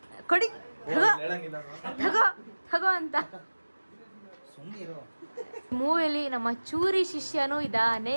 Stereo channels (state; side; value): inverted; both; correlation -1.00